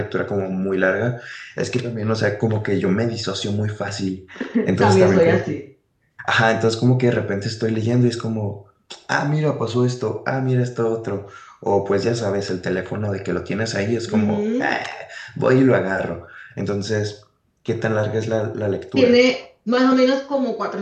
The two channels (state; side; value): identical; both; correlation 1.00